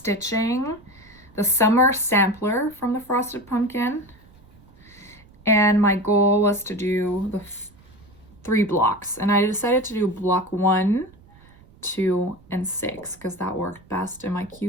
the summer sampler from the frosted pumpkin. And my goal was to do the 3 blocks. And I decided to do block 1, 2, and 6 because that worked best in my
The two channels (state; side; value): noise; right; rumble, 26 dB below the sound